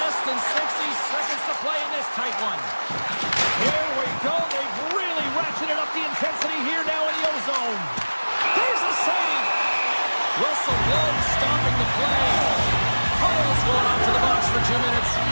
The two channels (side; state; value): both; inverted; correlation -1.00